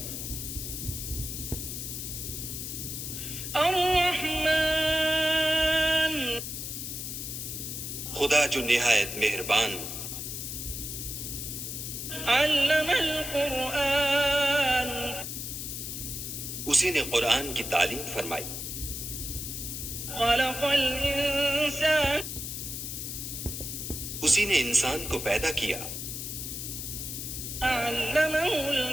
الرحمن، خدا جو نہایت مہربان، علم القرآن، اسی نے قرآن کی تعلیم فرمائی، خلق الانسان، اسی نے انسان کو پیدا کیا، علمہ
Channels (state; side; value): noise; left; hiss, 6 dB below the sound